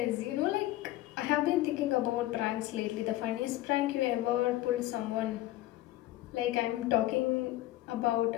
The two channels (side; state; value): right; quieter; 16.0 dB